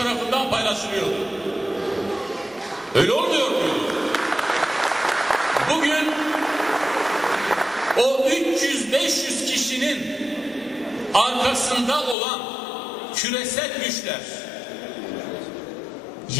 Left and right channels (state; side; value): drops out; right; at 12.2 s